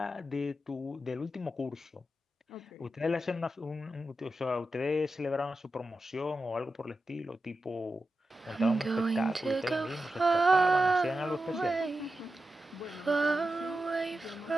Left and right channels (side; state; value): both; normal; correlation 0.90